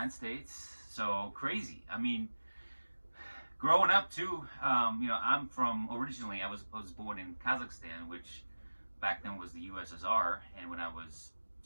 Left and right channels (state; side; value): inverted; both; correlation -1.00